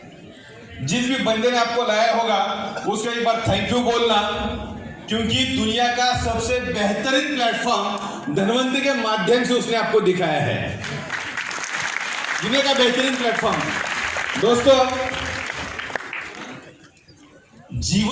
जिस भी बंदे ने आपको लाया होगा उसको एक बार थैंक यू बोलना, क्योंकि दुनिया का सबसे बेहतरीन प्लेटफॉर्म धनवंतरी के माध्यम से उसने आपको दिखाया है। दुनिया का बेहतरीन प्लेटफॉर्म। दोस्तों,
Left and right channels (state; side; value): identical; both; correlation 1.00